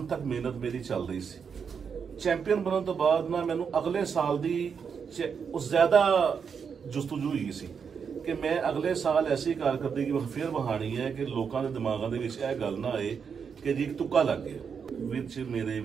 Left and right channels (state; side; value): quieter; left; 6.5 dB